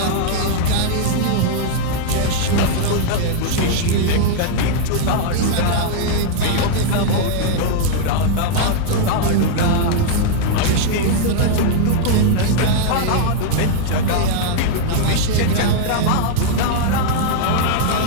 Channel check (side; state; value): both; different; correlation -0.01